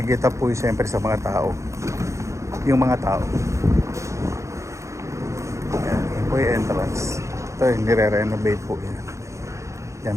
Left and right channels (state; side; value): late; left; 0.15 ms